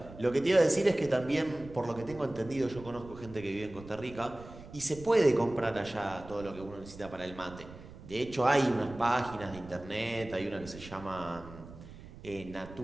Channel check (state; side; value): noise; right; rumble, 16 dB below the sound